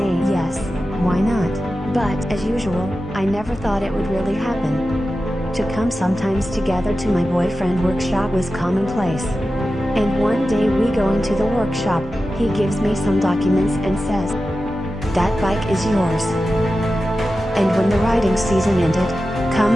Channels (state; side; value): normal; both; correlation 0.93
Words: yes, why not? But, as usual, I never thought it would really happen. To come sometimes together to my boyfriend workshop was commonplace. And one day we go into the workshop, he gives me some documents and says, "That bike is yours." And when the riding season ended,